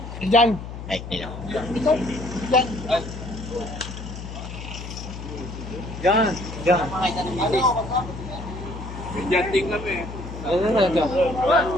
Diyan! Ay, nila. Diyan! Yan. Yan. Diyan din kami.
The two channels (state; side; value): noise; left; hum, 10 dB below the sound